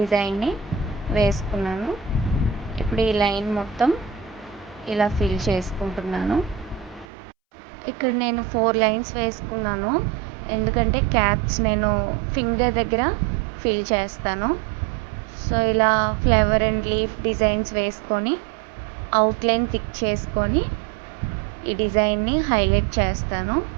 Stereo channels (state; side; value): drops out; left; at 7.1 s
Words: వేసుకున్నాను. ఇప్పుడు ఈ లైన్ మొత్తం ఇలా ఫిల్ చేసుకుంటున్నాను. ఇక్కడ నేను 4 లైన్స్ వేసుకున్నాను, ఎందుకంటే క్యాప్స్ నేను ఫింగర్ దగ్గర ఫిల్ చేస్తాను. సో ఇలా ఫ్లవర్ అండ్ లీఫ్ డిజైన్స్ వేసుకొని అవుట్లైన్ థిక్ చేసుకొని ఈ డిజైన్ని హైలైట్ చేస్తాను.